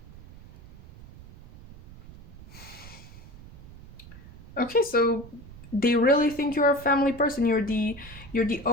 Okay, so they really think you're a family person. You're the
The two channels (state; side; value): noise; right; rumble, 18 dB below the sound